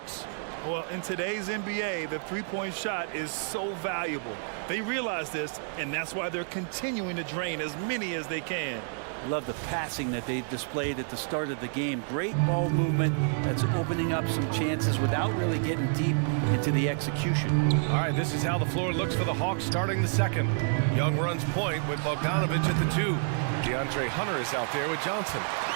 Well, in today's NBA, the three-point shot is so valuable. They realize this, and that's why they're continuing to drain as many as they can. Love the passing that they displayed at the start of the game. Great ball movement that's opening up some chances without really getting deep into the execution. All right, this is how the floor looks for the Hawks starting the second. Young runs point with Bogdanovich at the 2. DeAndre Hunter is out there with Johnson.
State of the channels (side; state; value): left; silent; 58 dB below the other